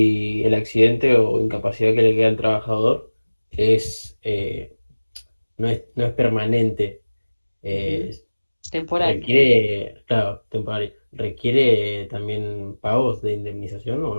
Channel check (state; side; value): inverted; both; correlation -1.00